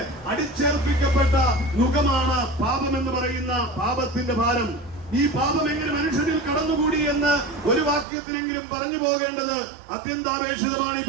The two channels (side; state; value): left; drops out; at 8.1 s